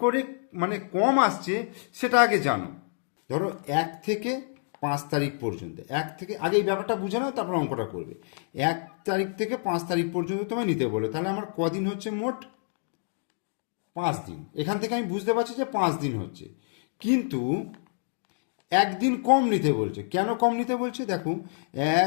করে মানে কম আসছে সেটা আগে জানো। ধরো 1 থেকে 5 তারিখ পর্যন্ত, আগে এই ব্যাপারটা বুঝে নাও, তারপর অঙ্কটা করবে। 1 তারিখ থেকে 5 তারিখ পর্যন্ত তোমায় নিতে বলে, তাহলে আমার কদিন হচ্ছে মোট 5 দিন। এখান থেকে আমি বুঝতে পারছি যে 5 দিন হচ্ছে, কিন্তু 1 দিন কম নিতে বলছে। কেন কম নিতে বলছে দেখো,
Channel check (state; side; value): silent; right; digital silence